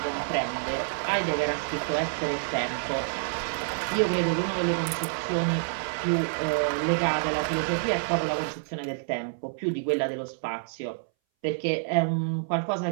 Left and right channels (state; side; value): silent; left; 59 dB below the other